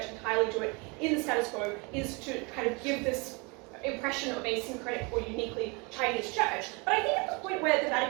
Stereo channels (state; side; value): quieter; left; 29.7 dB